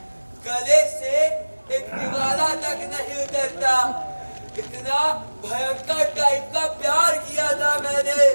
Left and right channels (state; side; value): inverted; both; correlation -1.00